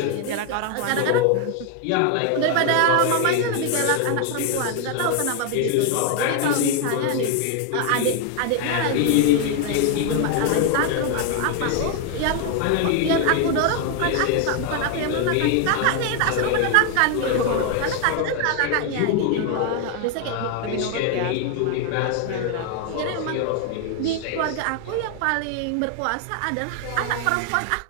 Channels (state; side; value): different; both; correlation 0.01